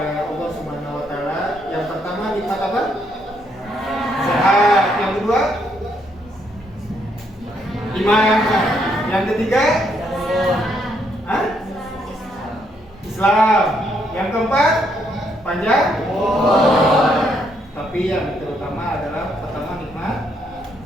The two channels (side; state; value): both; normal; correlation 0.73